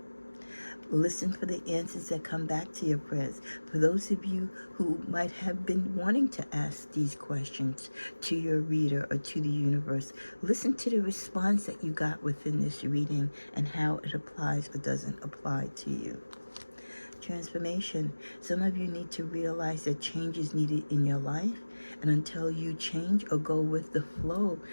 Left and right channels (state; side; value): inverted; both; correlation -1.00